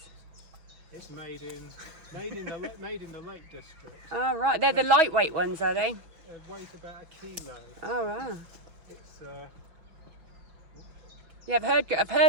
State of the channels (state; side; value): late; left; 6.2 ms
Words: It's made in the Lake District. Oh right, they're the lightweight ones, are they? It weighs about 1 kilo. Oh wow. It's Yeah, I've